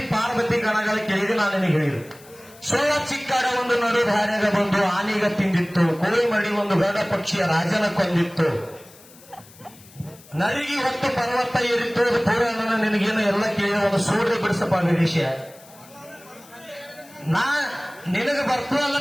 ಪಾರ್ವತಿ ಗಣಗಳ ಕೇಳಿದ್ರೆ ನಾನು ನಿನಗೆ ಹೇಳಿದ್ರು. ಸೋಳ ಚಿಕ್ಕಾಡ ಒಂದು ನಡು ಧಾರ್ಯಾಗ ಬಂದು ಆನೆಗ ತಿಂದಿತ್ತು, ಕೋಳಿ ಮಡಿ ಒಂದು ಗರುಡ ಪಕ್ಷಿಯ ರಾಜನ ಕೊಂದಿತ್ತು, ನರಿಗೆ ಹೊತ್ತು ಪರ್ವತ ಏರಿತ್ತು, ಪುರಾಣ ನಿನಗೇನು ಎಲ್ಲ ಕೇಳಿ ಒಂದು ಸೂರ್ಯ ಬಿಡಿಸಪ್ಪ ನಿರೀಶ. ನಾ ನಿನಗೆ ಬರ್ತು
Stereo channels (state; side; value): noise; left; hiss, 23 dB below the sound